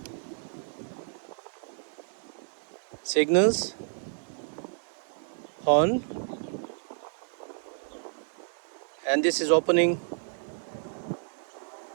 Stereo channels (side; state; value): left; silent; digital silence